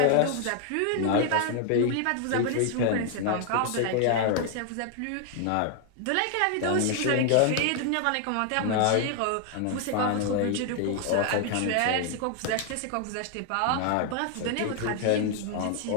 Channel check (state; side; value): different; both; correlation 0.00